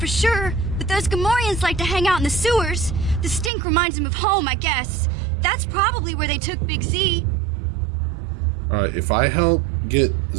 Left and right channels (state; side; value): drops out; left; at 3.5 s